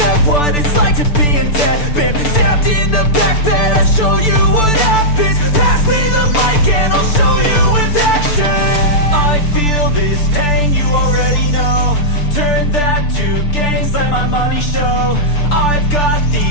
what it's like to be in debt. Been stabbed in the back bed, I'll show you what happens. Pass me the mic and I'll show you with action. I feel this pain, you already know. Turn that to gains, let my money show. I've got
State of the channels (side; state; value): right; late; 6.8 ms